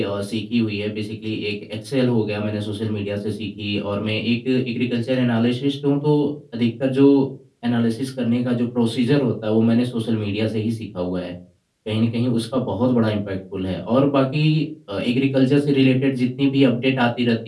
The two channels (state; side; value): identical; both; correlation 1.00